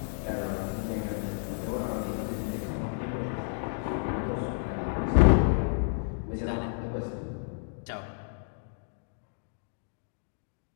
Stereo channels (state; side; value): silent; right; digital silence